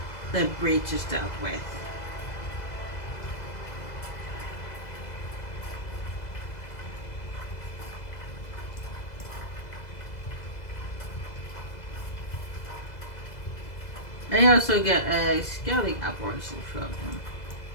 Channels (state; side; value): late; right; 2.0 ms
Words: the breach is dealt with. And you also get a scouting operation from him